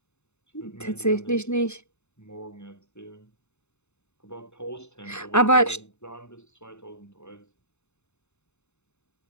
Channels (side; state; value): right; late; 0.82 ms